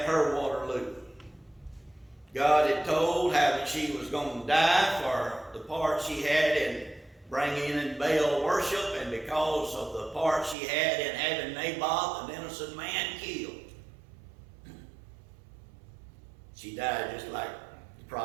her Waterloo. God had told how that she was going to die for the part she had in bringing in Baal worship, and because of the part she had in having Naboth, an innocent man, killed. She died just like the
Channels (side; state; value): left; drops out; at 10.6 s